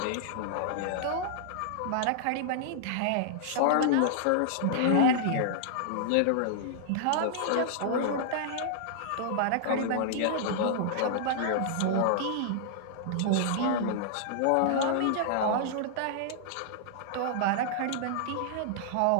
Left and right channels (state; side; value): different; both; correlation -0.01